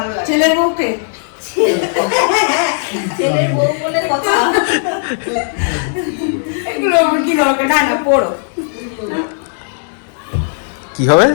লাগে। ছেলের বউকে, ছেলের বউ বলে কথা। এগুলো আমার কি দরকার? না না পড়ো। কি হবে?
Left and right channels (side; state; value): right; silent; digital silence